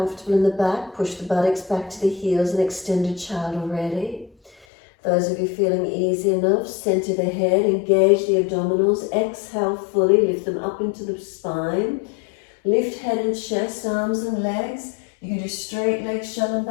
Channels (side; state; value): right; drops out; at 4.7 s